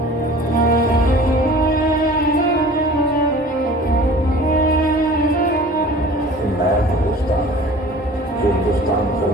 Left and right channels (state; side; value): normal; both; correlation 0.44